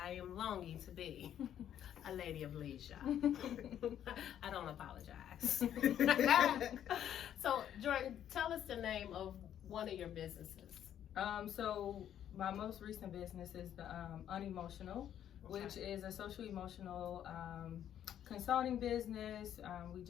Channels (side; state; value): right; quieter; 10.3 dB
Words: am longing to be a lady of leisure. I don't apologize. So, Jordyn, tell us the name of one of your businesses. So my most recent business is the Unemotional, which is a social emotional consulting business. We